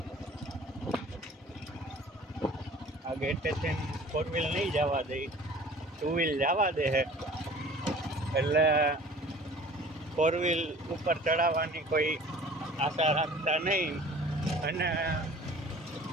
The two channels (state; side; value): normal; both; correlation 0.47